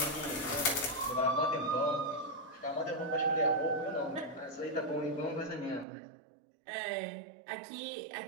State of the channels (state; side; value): drops out; left; at 5.9 s